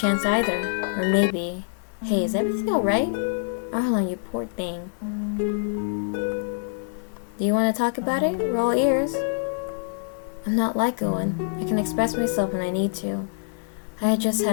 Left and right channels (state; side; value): silent; right; digital silence